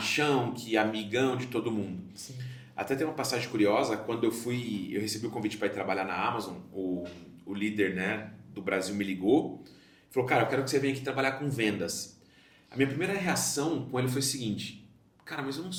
que é amigão de todo mundo. Sim. Até tem uma passagem curiosa, quando eu recebi o convite para ir trabalhar na Amazon, o líder, né, do Brasil me ligou, falou, cara, eu quero que você venha aqui trabalhar com vendas. A minha primeira reação com ele foi o seguinte, cara, mas eu não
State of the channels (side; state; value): both; identical; correlation 1.00